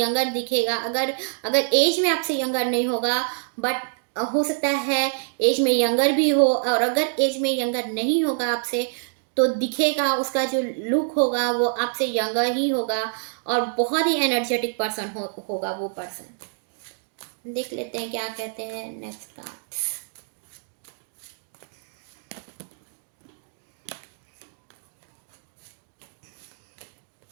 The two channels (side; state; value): left; silent; digital silence